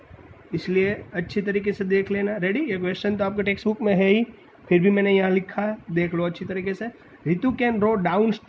इसलिए अच्छी तरीके से देख लेना। रेडी। ये क्वेश्चन तो आपके टेक्स्ट बुक में है ही, फिर भी मैंने यहाँ लिखा है, देख लो अच्छी तरीके से। Ritu can row डाउन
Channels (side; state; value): both; identical; correlation 1.00